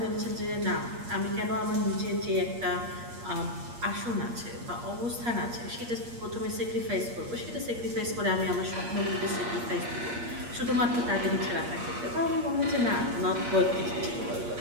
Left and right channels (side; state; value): left; late; 8.5 ms